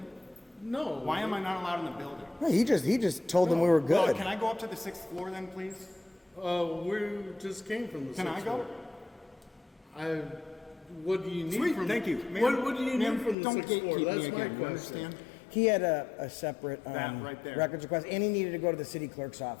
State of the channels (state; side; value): drops out; right; at 13.4 s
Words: No. Why am I not allowed in the building? he just told them we were Well, good. can I go up to the 6th floor then, please? We just came from the. Can I 6th go? floor. What do you need Sweet, from? thank you. Ma'am, What do you ma'am, need from the don't 6th floor? gatekeep That's me my again, you question. understand? He had a separate That right there. records request, and he needed to go to the city clerk's